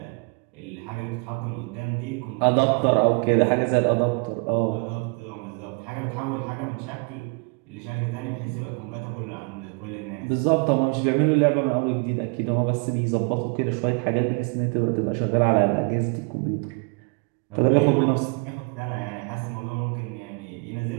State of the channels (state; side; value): quieter; left; 34.5 dB